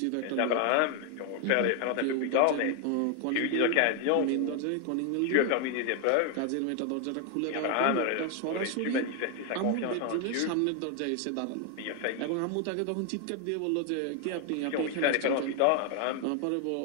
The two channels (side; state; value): both; different; correlation 0.01